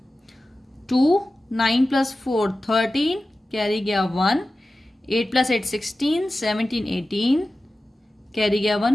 2 9 plus 4 13, carry गया 1, 8 plus 8 16, 17 18, कैरी गया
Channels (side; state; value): both; normal; correlation 0.95